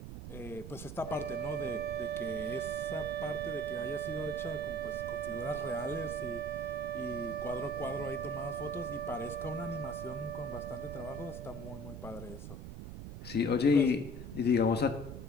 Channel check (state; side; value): noise; right; rumble, 9 dB below the sound